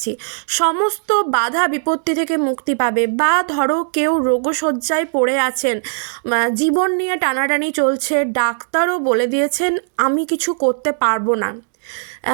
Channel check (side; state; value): left; silent; digital silence